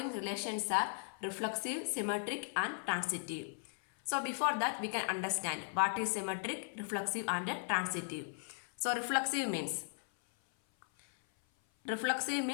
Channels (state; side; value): silent; right; 53 dB below the other